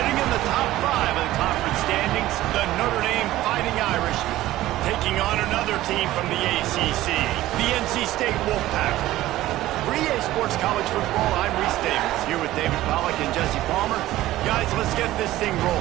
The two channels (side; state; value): left; quieter; 15.6 dB